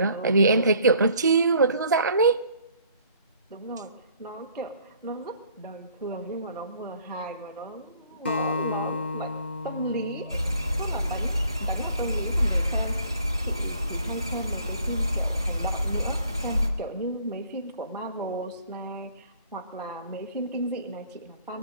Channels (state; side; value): inverted; both; correlation -0.58